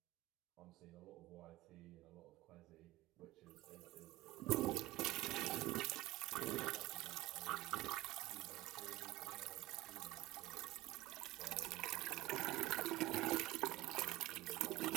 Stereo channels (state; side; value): quieter; left; 18.0 dB